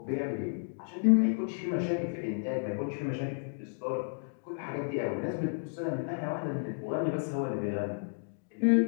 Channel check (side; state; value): right; silent; digital silence